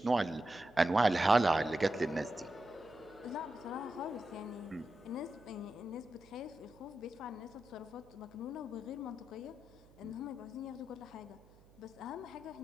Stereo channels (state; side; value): noise; right; hum, 26 dB below the sound